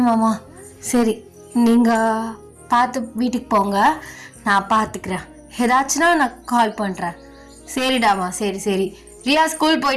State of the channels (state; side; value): identical; both; correlation 1.00